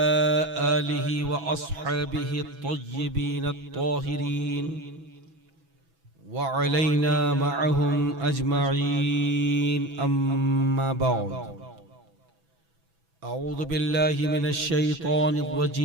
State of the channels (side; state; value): left; late; 6.0 ms